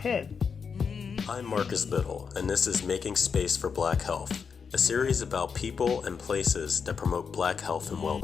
I'm Marcus Biddle, and this is Making Space for Black Health, a series about people and places that promote Black health and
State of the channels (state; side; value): quieter; right; 6.0 dB